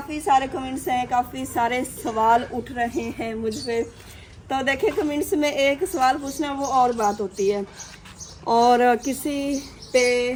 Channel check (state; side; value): identical; both; correlation 1.00